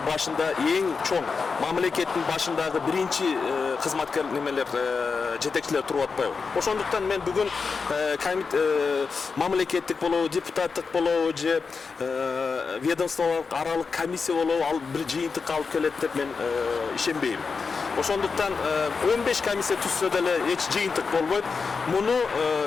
башында эң чоң мамлекеттин башындагы биринчи кызматкер жетекчилер туруп атпайбы. Ошондуктан мен бүгүн мамлекеттик болобу, депутаттык болобу же ведомстволук аралык комиссия болобу, ал бир жыйынтыкка алып келет деп мен ишенбейм. Ошондуктан 15 комиссия түзсө деле эч жыйынтык болбойт. Муну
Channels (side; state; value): right; quieter; 5.0 dB